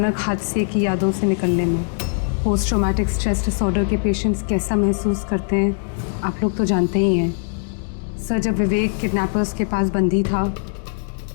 हादसे की यादों से निकलने में। पोस्ट ट्रॉमेटिक स्ट्रेस डिसऑर्डर के पेशेंट्स कैसा महसूस करते हैं आप लोग तो जानते ही हैं। सर, जब विवेक किडनैपर्स के पास बंदी था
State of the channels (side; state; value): right; silent; digital silence